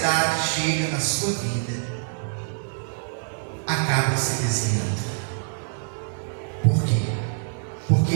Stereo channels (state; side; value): silent; left; 62 dB below the other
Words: chega na sua vida, acabam se desviando. Por quê?